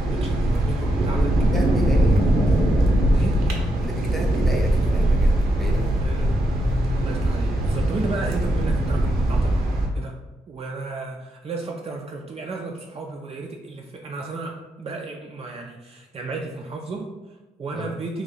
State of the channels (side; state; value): both; normal; correlation 0.82